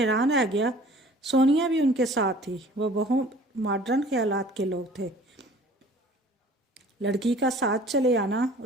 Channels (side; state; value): both; normal; correlation 0.49